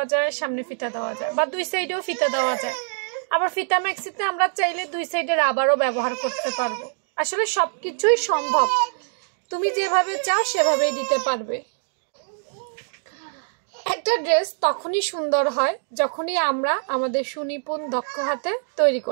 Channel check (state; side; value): silent; left; 63 dB below the other